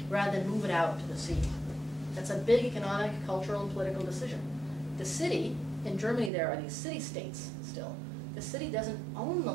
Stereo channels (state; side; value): drops out; left; at 6.3 s